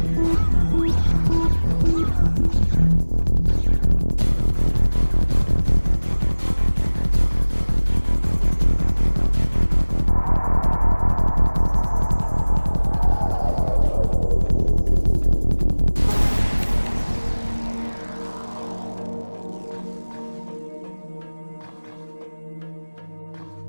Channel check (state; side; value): inverted; both; correlation -1.00